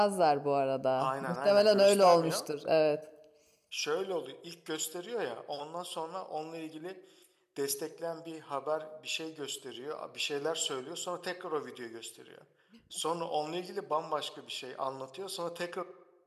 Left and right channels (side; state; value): both; identical; correlation 1.00